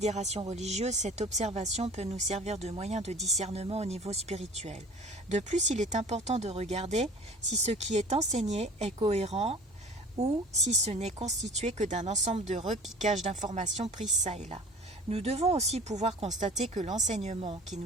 religieuse, cette observation peut nous servir de moyen de discernement au niveau spirituel. De plus, il est important de regarder si ce qui est enseigné est cohérent ou si ce n'est constitué que d'un ensemble de repiquages d'informations prises çà et là. Nous devons aussi pouvoir constater que l'enseignement qui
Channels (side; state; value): both; normal; correlation 0.43